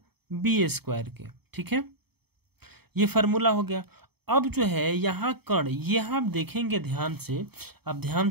B² के। ठीक है, ये फार्मूला हो गया। अब जो है यहाँ कण, ये हम देखेंगे ध्यान से, अब ध्यान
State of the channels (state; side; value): late; left; 0.97 ms